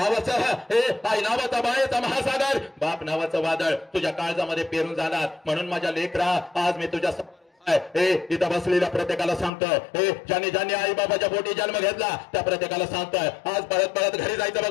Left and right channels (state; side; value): drops out; right; at 9.5 s